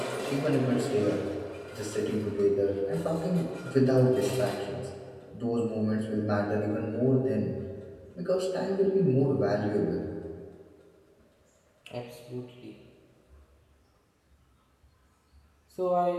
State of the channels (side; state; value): both; identical; correlation 1.00